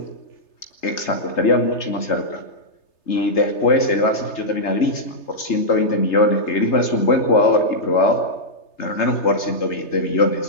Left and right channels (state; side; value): late; right; 3.3 ms